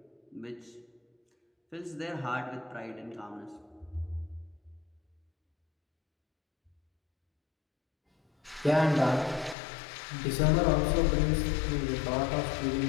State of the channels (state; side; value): drops out; right; at 9.6 s